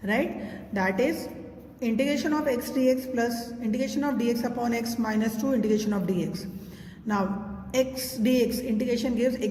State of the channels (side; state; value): both; identical; correlation 1.00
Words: Right? That is integration of x dx plus integration of dx upon x minus 2 integration of dx. Now x dx integration gives